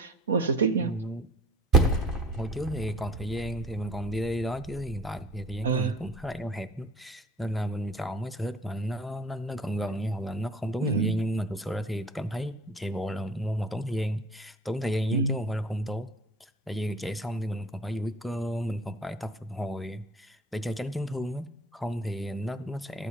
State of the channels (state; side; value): normal; both; correlation 0.47